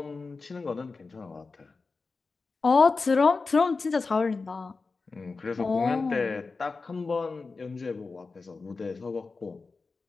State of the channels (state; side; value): quieter; right; 4.1 dB